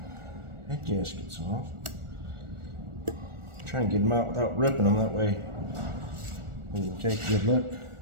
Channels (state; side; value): late; left; 1.4 ms